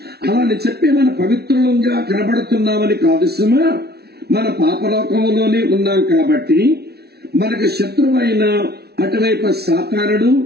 అలాని చెప్పి మన పవిత్రులంగా కనబడుతున్నామని కాదు సుమా. మన పాపలోకంలోనే ఉన్నాం కాబట్టి మనకు శత్రువైన అటువైపు సాతానుడు,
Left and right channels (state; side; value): late; left; 0.47 ms